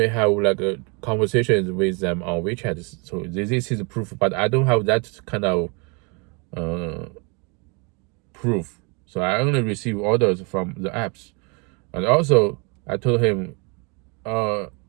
have like conversations with them on WeChat. So this is proof, but I don't have that kind of proof. So I only receive orders from the apps. And also I told him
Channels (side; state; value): left; quieter; 32.4 dB